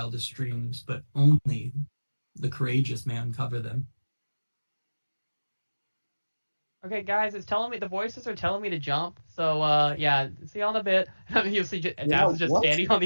dreams, but only the courageous may uncover them." Okay, guys, the voices are telling me to jump. So, yeah, see you on a bit. You'll see Daz is just what? standing on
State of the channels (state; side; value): inverted; both; correlation -1.00